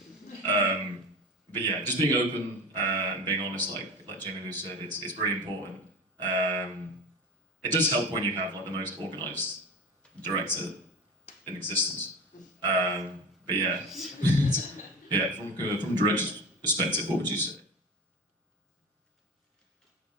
but yeah, just being open and being honest, like Jamie Lou said, it's really important. It does help when you have like the most organised director in existence. But yeah, yeah, from director's perspective, what would you say?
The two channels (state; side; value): normal; both; correlation 0.29